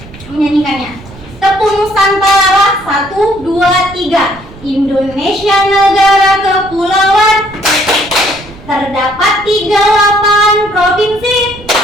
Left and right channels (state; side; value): noise; right; rumble, 19 dB below the sound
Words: menyanyikannya. Tepuk Nusantara, 1, 2, 3. Indonesia negara kepulauan, terdapat 38 provinsi.